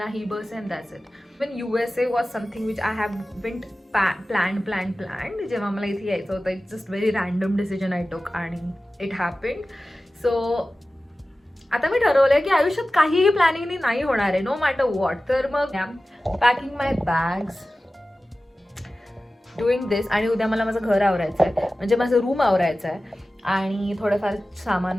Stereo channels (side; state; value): both; normal; correlation 0.96